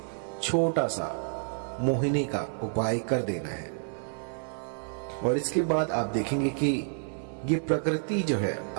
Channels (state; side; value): silent; left; 58 dB below the other